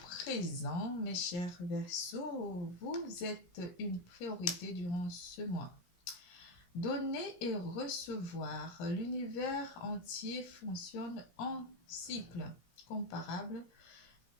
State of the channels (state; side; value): late; right; 17 ms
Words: présent, mes chers Verseaux. Vous êtes une priorité durant ce mois. Donner et recevoir. L'univers entier fonctionne en cycle comparable